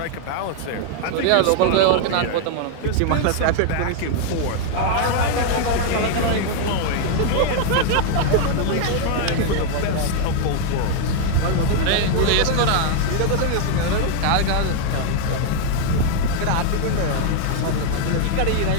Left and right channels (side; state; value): both; different; correlation 0.00